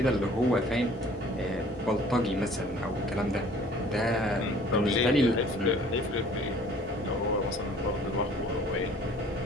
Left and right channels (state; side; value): normal; both; correlation 0.52